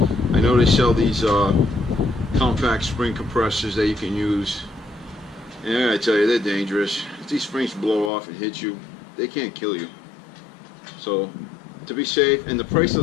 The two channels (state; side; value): drops out; right; at 8.1 s